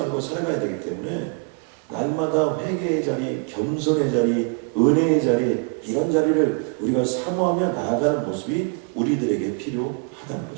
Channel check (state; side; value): quieter; left; 37.6 dB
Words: 살아가야 되기 때문에 날마다 회개의 자리, 겸손의 자리, 은혜의 자리, 이런 자리를 우리가 사모하며 나아가는 모습이 우리들에게 필요하다는